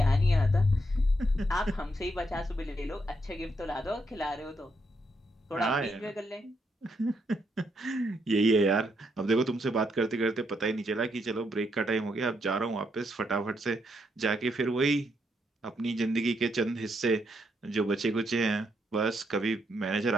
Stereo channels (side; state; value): both; normal; correlation 0.78